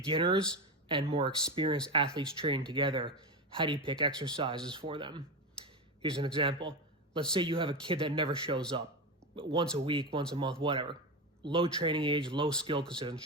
and more experienced athletes training together. How do you pick exercises for them? Here's an example. Let's say you have a kid that never shows up, once a week, once a month, whatever. Low training age, low skill because they doesn't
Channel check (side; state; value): both; normal; correlation 0.17